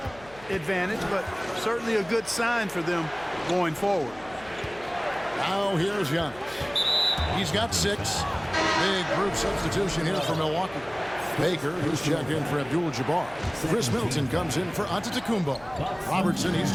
advantage, but certainly a good sign for them going forward. Now here's Giannis. He's got 6. Big group substitution here for Milwaukee. Baker, who's checked in for Abdul-Jabbar. Chris Middleton comes in for Antetokounmpo. Robertson, he's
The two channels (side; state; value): left; noise; hum, 22 dB below the sound